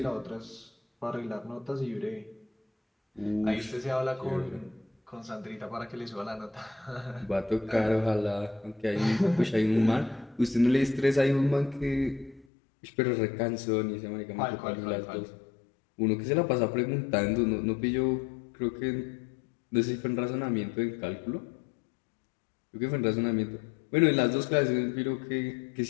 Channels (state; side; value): drops out; right; at 12.5 s